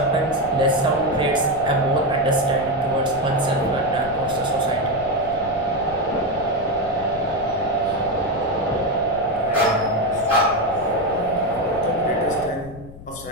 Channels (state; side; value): noise; left; rumble, 17 dB below the sound